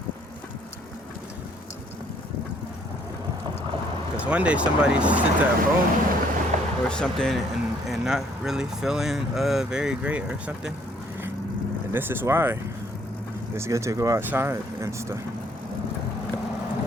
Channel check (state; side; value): normal; both; correlation 0.64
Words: Because one day somebody sits at home or something and not really feeling very great or something. And this is why it's good to go outside and stuff.